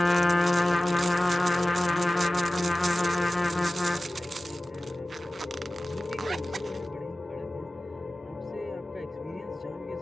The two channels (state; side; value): normal; both; correlation 0.96